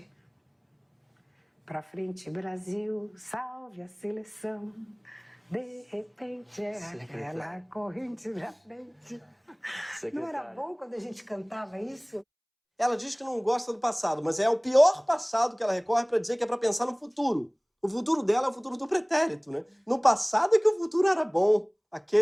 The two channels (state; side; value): identical; both; correlation 1.00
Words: Para frente, Brasil, salve a seleção. De repente é aquela corrente da frente. Não era bom quando a gente cantava isso? Ela diz que não gosta do passado, mas é o pior passado que ela recorre para dizer que é para pensar no futuro. O futuro dela é o futuro do pretérito, né? No passado é que o futuro era bom,